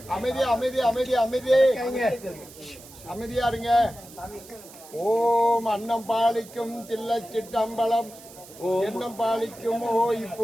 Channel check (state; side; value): noise; right; hiss, 19 dB below the sound